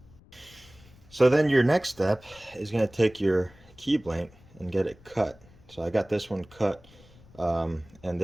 So then your next step is going to take your key blank and get it cut. So I got this one cut, and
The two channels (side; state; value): left; noise; rumble, 25 dB below the sound